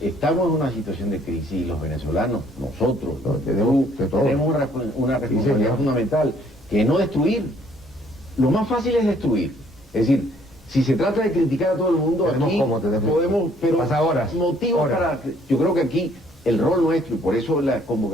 en una situación de crisis y los venezolanos, nosotros, tenemos una responsabilidad fundamental, que es no destruir. Lo más fácil es destruir. Es decir, Si se trata de criticar a todo el mundo, aquí podemos, pero pasa horas, motivos para... Yo creo que aquí el rol nuestro, y por eso la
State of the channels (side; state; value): both; normal; correlation 0.63